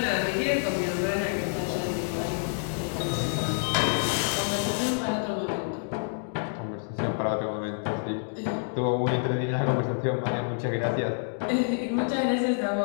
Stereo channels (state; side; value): silent; right; digital silence